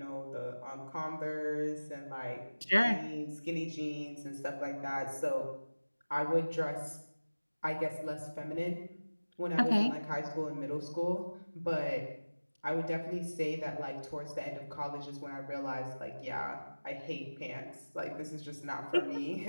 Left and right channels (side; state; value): both; inverted; correlation -1.00